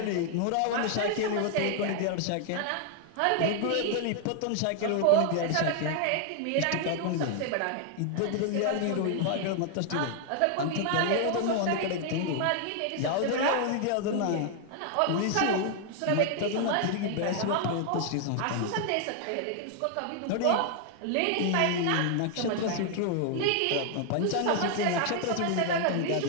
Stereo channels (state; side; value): different; both; correlation 0.00